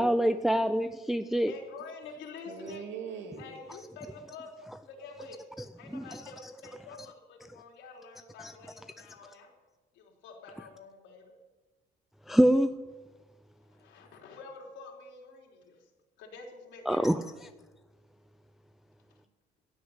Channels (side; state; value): both; normal; correlation 0.94